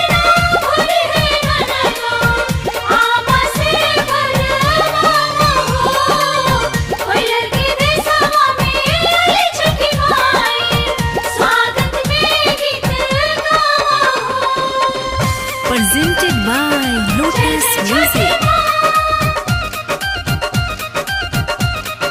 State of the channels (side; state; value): both; identical; correlation 1.00